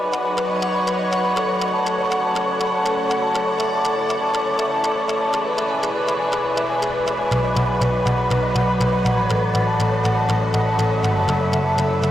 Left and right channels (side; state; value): both; normal; correlation 0.87